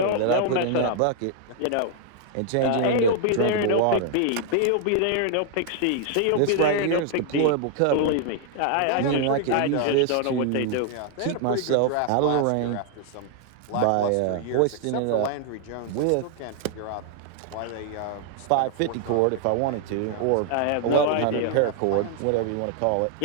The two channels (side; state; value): both; different; correlation 0.00